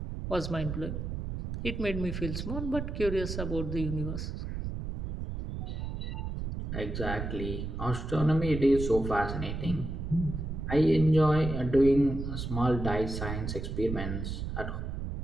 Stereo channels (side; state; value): right; noise; rumble, 5 dB below the sound